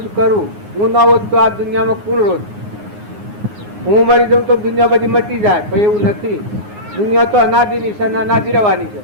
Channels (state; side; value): late; left; 9.6 ms